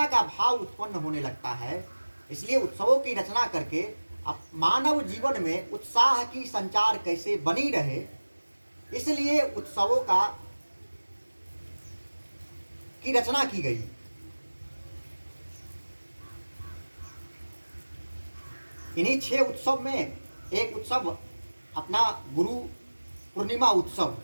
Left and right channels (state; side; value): inverted; both; correlation -1.00